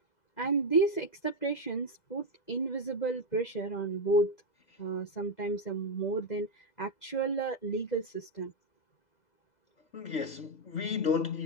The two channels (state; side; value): late; right; 2.0 ms